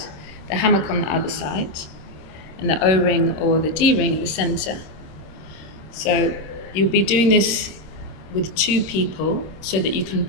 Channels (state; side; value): late; right; 26 ms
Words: the hammock on the other side, and the O-ring or the D-ring in the center. So you'll be doing this with two people so that you can